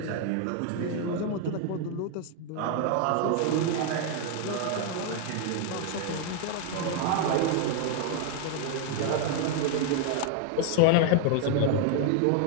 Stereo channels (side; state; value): both; different; correlation 0.01